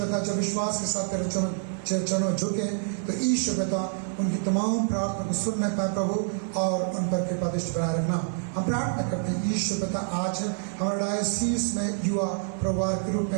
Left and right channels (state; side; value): silent; left; 60 dB below the other